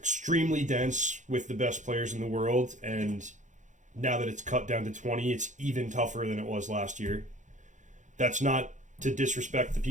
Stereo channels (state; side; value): late; left; 0.36 ms